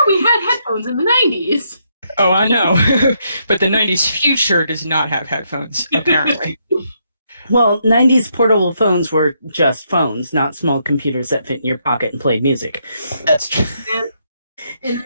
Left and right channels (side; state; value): both; inverted; correlation -0.76